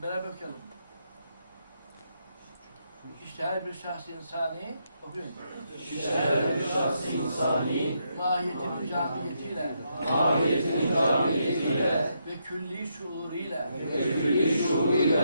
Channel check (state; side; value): inverted; both; correlation -0.79